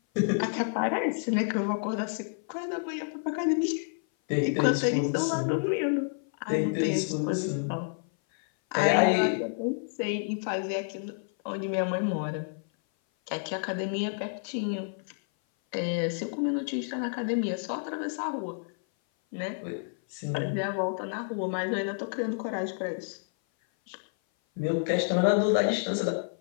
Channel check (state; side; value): silent; right; 56 dB below the other